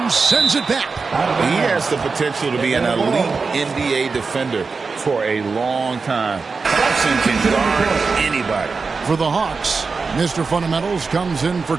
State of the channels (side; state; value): left; quieter; 4.6 dB